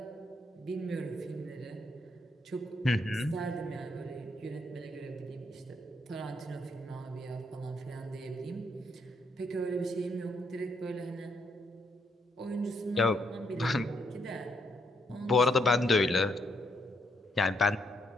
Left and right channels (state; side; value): normal; both; correlation 0.75